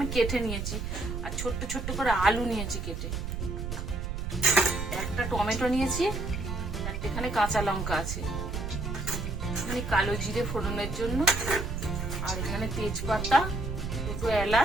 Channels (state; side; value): noise; right; rumble, 4 dB below the sound